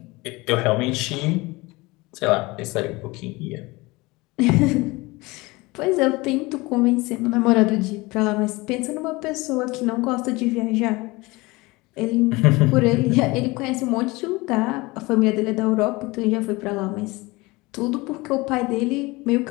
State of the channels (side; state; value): right; quieter; 22.9 dB